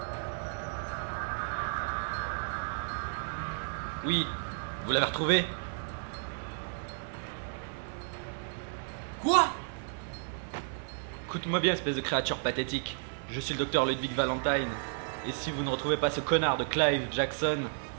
Oui, vous l'avez retrouvé? Quoi? Écoute-moi bien, espèce de créature pathétique. Je suis le docteur Ludwig Valentine. Et si vous ne retrouvez pas ce connard de Clive Jackson,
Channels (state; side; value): silent; left; 56 dB below the other